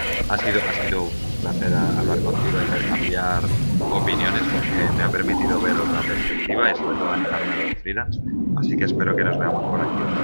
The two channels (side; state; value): both; inverted; correlation -1.00